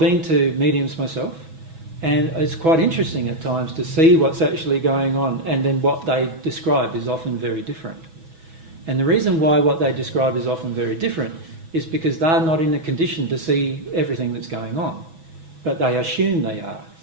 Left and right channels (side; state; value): left; late; 6.1 ms